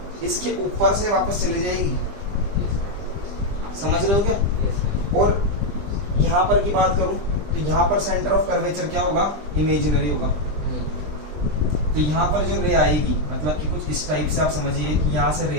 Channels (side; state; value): left; late; 20 ms